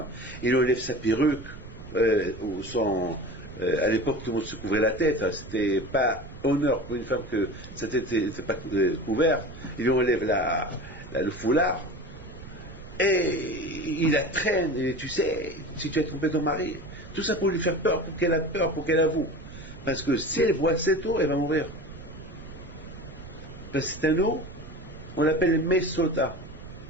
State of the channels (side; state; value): right; noise; rumble, 15 dB below the sound